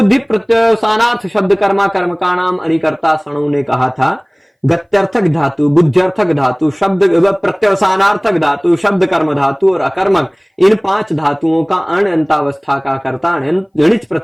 प्रत्यवसानार्थ शब्द कर्मा कर्म का नाम अणिकर्ता सणु ने कहा था। गत्यर्थक धातु, बुद्ध्यर्थक धातु, शब्द प्रत्यवसानार्थक धातु, शब्द कर्म धातु और अकर्मक, इन 5 धातुओं का अण अंतावस्था का कर्ता अणिच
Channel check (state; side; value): identical; both; correlation 1.00